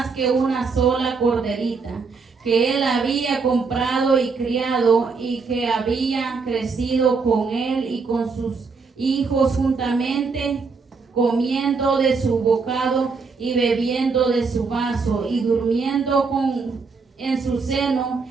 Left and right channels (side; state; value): left; quieter; 4.7 dB